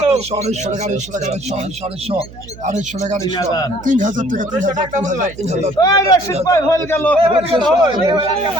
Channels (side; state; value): right; noise; hum, 18 dB below the sound